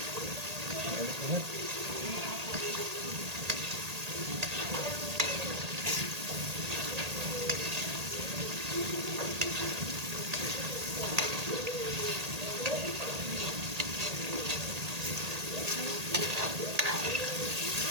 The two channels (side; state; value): left; late; 1.8 ms